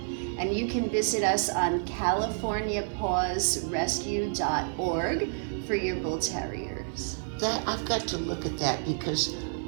And you can visit us on CaliforniaPawsRescue.org for your bull terriers. I've got to look at that, because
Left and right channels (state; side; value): silent; left; 58 dB below the other